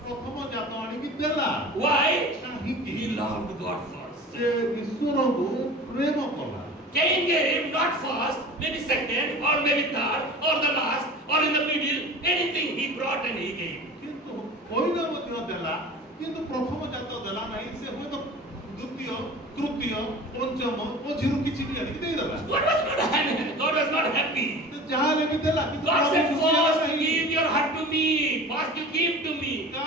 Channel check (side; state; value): both; normal; correlation 0.38